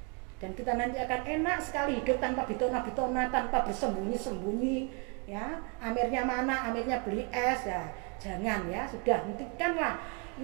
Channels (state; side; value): quieter; left; 33.9 dB